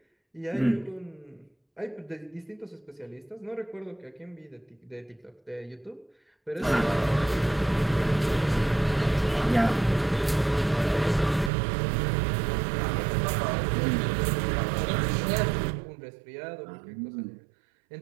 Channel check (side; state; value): left; drops out; at 11.5 s